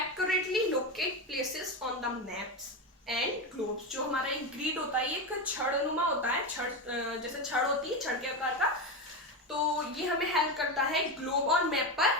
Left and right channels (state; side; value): normal; both; correlation 0.16